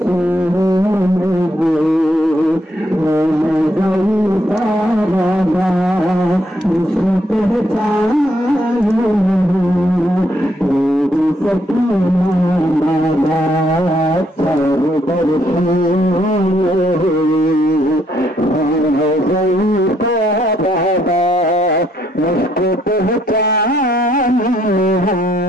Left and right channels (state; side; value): normal; both; correlation 0.73